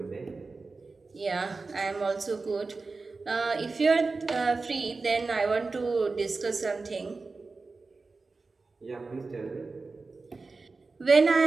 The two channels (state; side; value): quieter; left; 3.9 dB